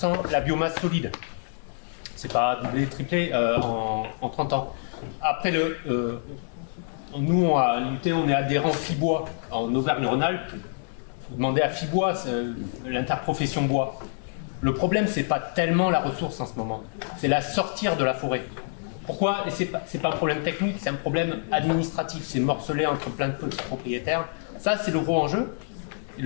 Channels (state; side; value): silent; right; digital silence